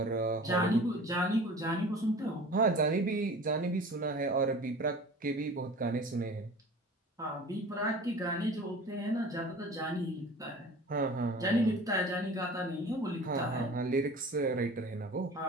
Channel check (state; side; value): normal; both; correlation 0.41